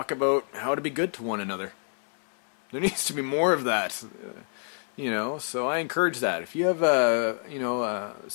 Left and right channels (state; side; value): silent; right; 59 dB below the other